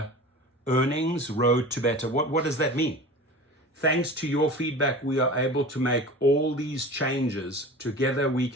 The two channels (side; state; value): both; normal; correlation 0.36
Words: earnings? Road to better. What does that mean? Thanks to your feedback, we are able to make all these changes. Together, we